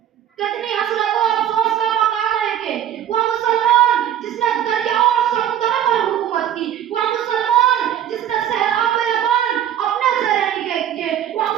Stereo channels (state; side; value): quieter; left; 10.5 dB